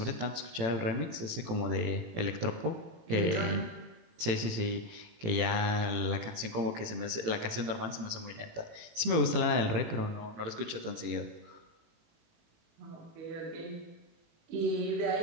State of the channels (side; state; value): left; late; 18 ms